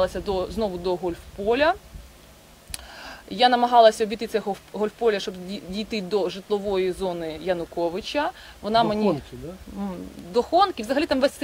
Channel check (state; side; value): identical; both; correlation 1.00